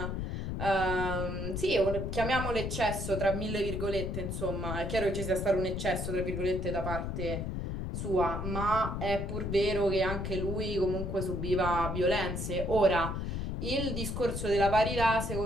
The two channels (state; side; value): noise; left; rumble, 3 dB below the sound